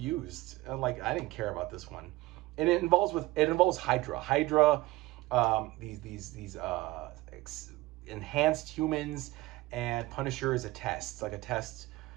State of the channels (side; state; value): left; quieter; 19.4 dB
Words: Like, I didn't care about this one. And it involves Hydra. These enhanced humans, and Punisher is a test. It's like a test.